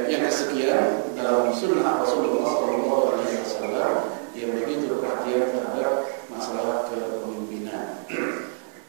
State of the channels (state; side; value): silent; left; digital silence